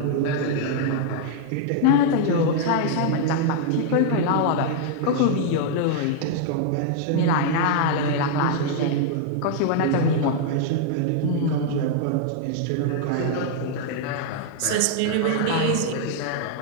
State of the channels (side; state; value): both; different; correlation 0.00